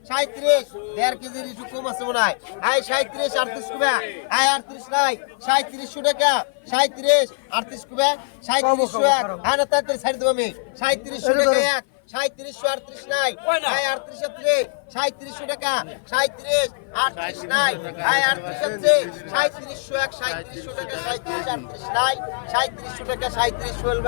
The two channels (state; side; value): silent; right; 55 dB below the other